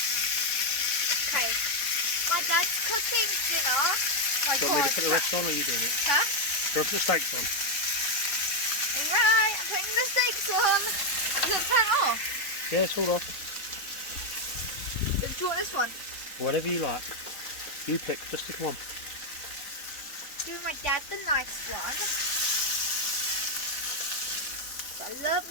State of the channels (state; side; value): late; right; 4.0 ms